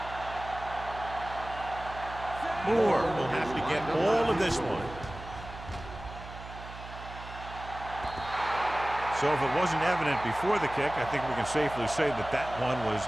Moore will have to get all of this one. So if it wasn't evident before the kick, I think we can safely say that that one was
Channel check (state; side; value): noise; right; hum, 13 dB below the sound